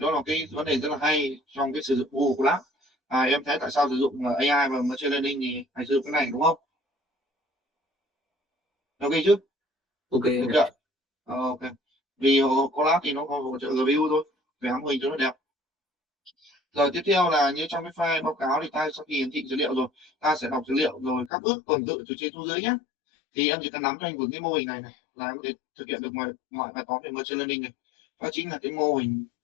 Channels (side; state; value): right; drops out; at 21.3 s